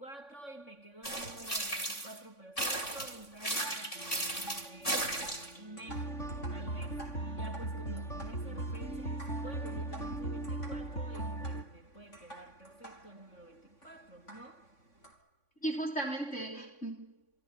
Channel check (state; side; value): late; right; 3.5 ms